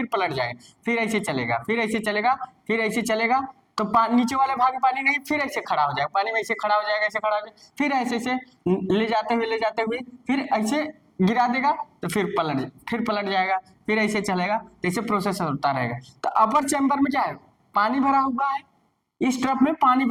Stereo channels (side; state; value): both; identical; correlation 1.00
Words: पलट जाएगा, फिर ऐसे चलेगा, फिर ऐसे चलेगा, फिर ऐसे चलेगा, तो नीचे वाले भाग में पानी नहीं, फिर ऐसे खड़ा हो जाएगा, पानी में ऐसे खड़ा हो जाएगा, ऐसे खड़ा हो जाएगा, फिर ऐसे ले जाते हुए फिर ऐसे गिरा देगा, तो फिर पलट जाएगा, फिर ऐसे चलेगा, तो ऐसे प्रोसेस होता रहेगा। तो अपर चैम्बर में क्या है, पानी भरा हुआ है, इस ट्रफ में पानी